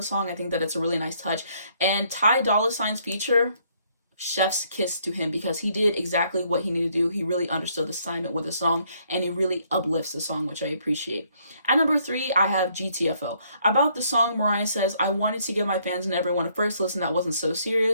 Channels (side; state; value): both; inverted; correlation -0.68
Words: song. I think that it's a really nice touch. And Ty Dolla $ign's feature, chef's kiss to him, because he did exactly what he needed to do. He really understood the assignment with the song, and he really uplifts the song, which I appreciate. At number 3, I have GTFO. About the song, Mariah says, I wanted to give my fans and everyone a first listen that wasn't so